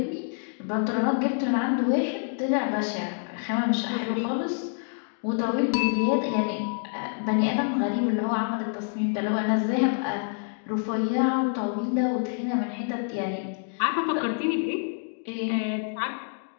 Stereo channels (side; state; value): right; silent; 58 dB below the other